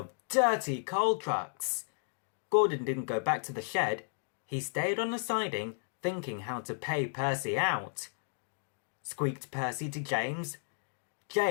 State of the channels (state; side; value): silent; right; digital silence